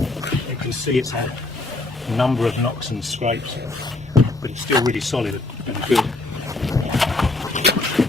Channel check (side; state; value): right; quieter; 3.0 dB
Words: You can see it's had a number of knocks and scrapes, but it's still really solid and good.